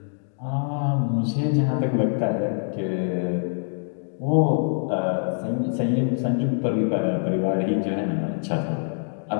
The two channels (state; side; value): silent; right; digital silence